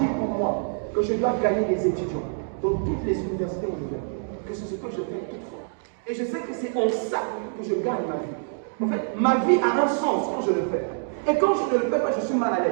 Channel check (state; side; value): silent; left; digital silence